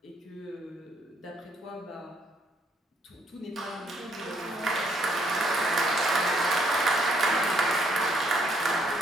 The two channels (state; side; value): normal; both; correlation 0.69